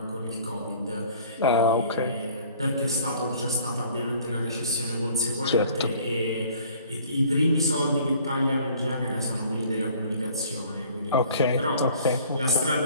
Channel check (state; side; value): inverted; both; correlation -0.53